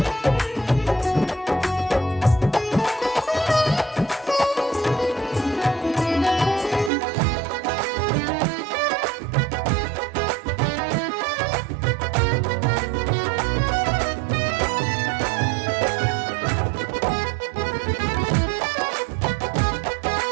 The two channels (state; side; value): drops out; left; at 6.9 s